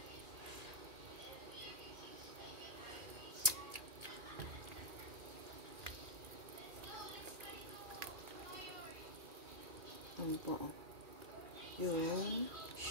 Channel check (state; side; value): late; left; 2.4 ms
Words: Ano po? Yung